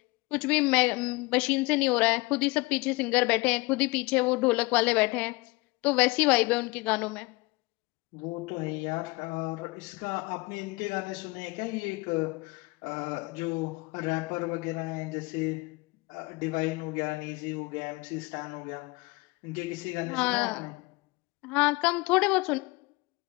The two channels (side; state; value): right; quieter; 24.6 dB